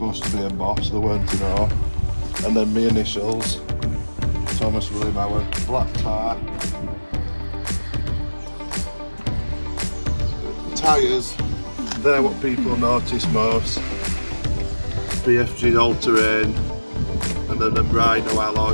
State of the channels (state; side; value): inverted; both; correlation -1.00